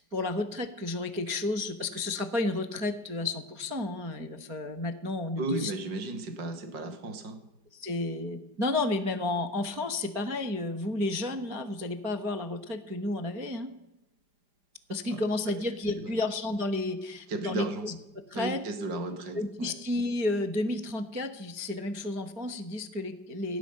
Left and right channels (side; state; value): left; late; 4.9 ms